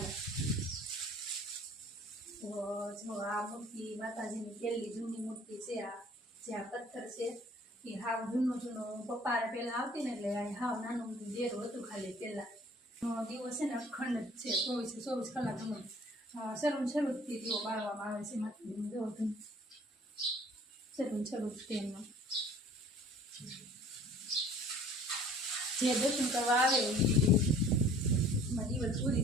તો જો આ મૂર્તિ માતાજીની પહેલી જૂની મૂર્તિ છે। આ જે આ પથ્થર છે એ હાવ જૂનું પપ્પાને પહેલાં આવતી ને એટલે હાવ નાનું ડેરું હતું ખાલી પહેલાં। દિવસ છે ને અખંડ જ છે, 24 કલાકનો શરૂથી દીવો બાળવામાં આવે છે માતાજીનું। જો શરૂથી એમનો જે દર્શન કરવા આવે એમાં દિવસ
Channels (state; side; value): normal; both; correlation 0.52